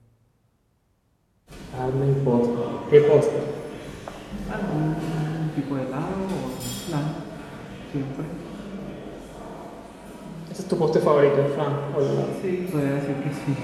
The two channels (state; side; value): identical; both; correlation 1.00